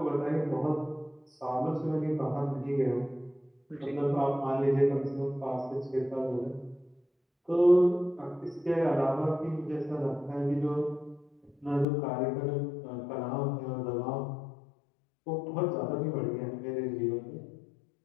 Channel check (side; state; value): right; drops out; at 11.9 s